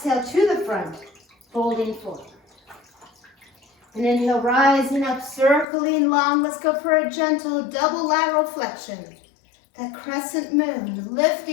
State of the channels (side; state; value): right; drops out; at 5.7 s